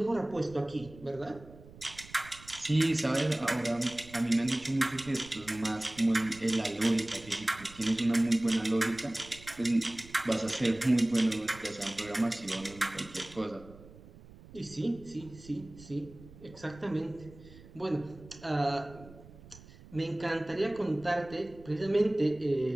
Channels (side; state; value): right; noise; rumble, 20 dB below the sound